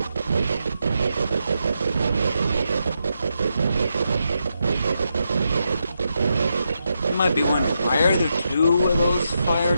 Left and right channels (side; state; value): both; inverted; correlation -0.84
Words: You might be wondering, why are there 2 of those fired